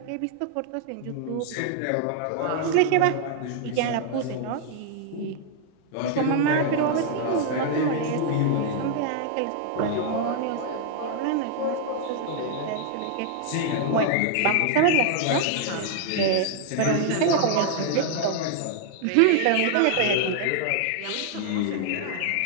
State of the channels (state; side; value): different; both; correlation 0.00